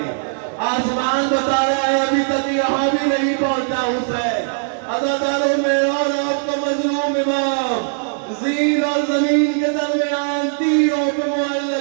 آسمان بتا رہا ہے ابھی تک یہاں بھی نہیں پہنچا حسین۔ عزاداروں میں اور آپ کا مظلوم امام زین اور زمین کے درمیان تیروں پہ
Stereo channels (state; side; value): silent; left; 62 dB below the other